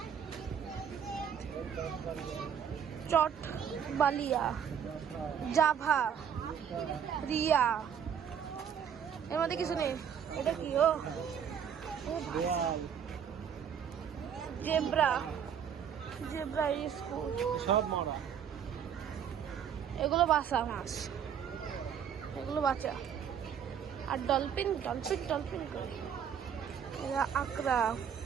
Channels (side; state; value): left; quieter; 8.1 dB